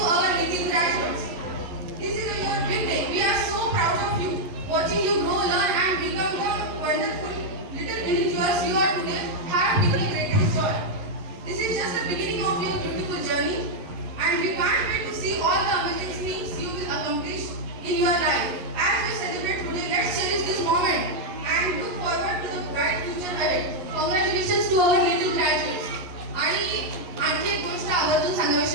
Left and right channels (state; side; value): late; left; 11 ms